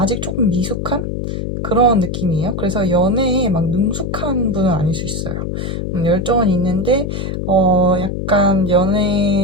조금 미숙한 그런 느낌이에요. 그래서 연애에 막 능숙한 분은 아닐 수 있어요. 열정은 있는데, 약간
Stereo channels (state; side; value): noise; left; hum, 4 dB below the sound